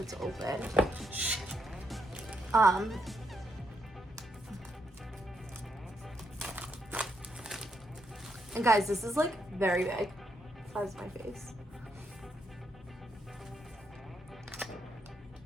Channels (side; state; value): both; normal; correlation 0.79